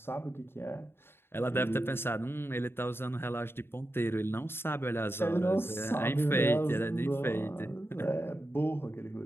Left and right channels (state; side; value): late; right; 0.11 ms